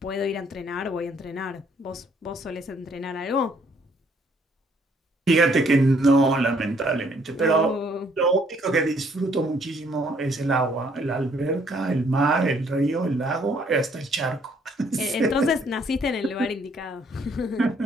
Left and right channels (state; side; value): normal; both; correlation 0.65